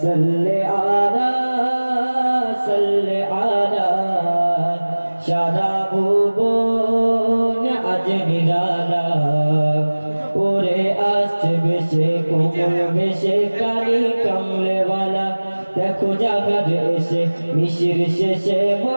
সাল্লি আলা সারা ভুবন আজ নিরালা ওরে আসছে বেশে কোমল বেশে কালি কমলেওয়ালা দেখো জাগার এসে মিশির শেষে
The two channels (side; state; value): both; inverted; correlation -1.00